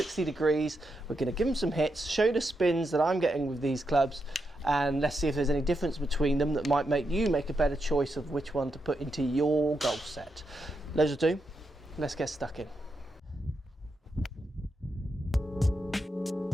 degrees. We're going to give them some hits, show you the spins that I'm getting with these clubs, and let's see if there's any difference between them that might make you make a better choice of which one to put into your golf set. Those are two. Let's get stuck in.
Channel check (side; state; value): both; normal; correlation 0.84